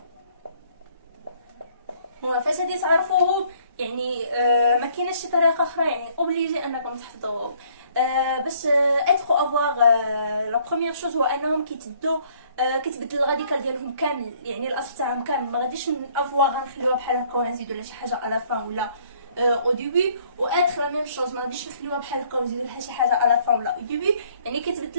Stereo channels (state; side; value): inverted; both; correlation -0.62